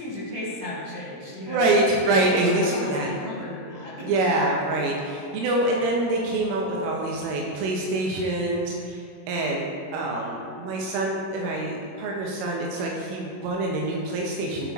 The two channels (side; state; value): left; late; 21 ms